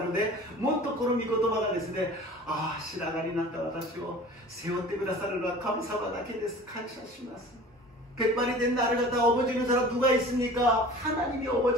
もっとこの御言葉がですね、ああ白髪になった私を背負ってくださるのは神様だけです。感謝します。 백발이 된 나를 갖다 업어주는 사람 누가 있습니까? 하나님이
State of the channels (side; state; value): both; normal; correlation 0.42